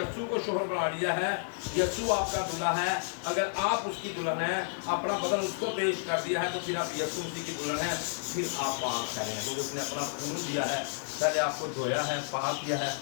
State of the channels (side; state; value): right; silent; digital silence